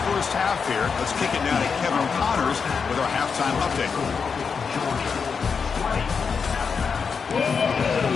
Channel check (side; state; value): right; quieter; 5.8 dB